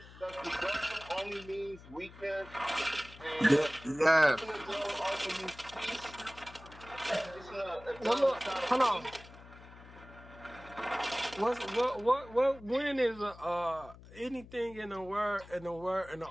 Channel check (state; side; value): noise; left; hum, 19 dB below the sound